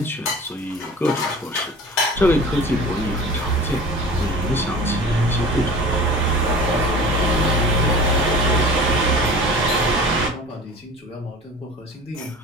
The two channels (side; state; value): both; normal; correlation 0.40